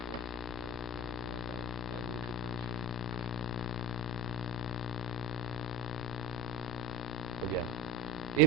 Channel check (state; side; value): normal; both; correlation 0.29